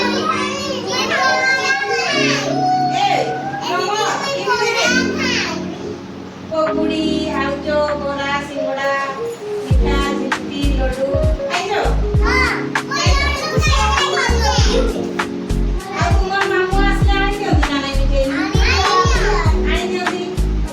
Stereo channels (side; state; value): both; identical; correlation 1.00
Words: পকুড়ি, আলুচো, বড়া, সিঙ্গড়া, মিঠা, জিলিপি, লডু খাইছো? ଆଉ ତୁମର ମାମୁଁ ଆସିଲେ ଆଣି ଦିଅନ୍ତି ନା ନାଇଁ ମିଠେଇ? ଆଣି ଦିଅନ୍ତି।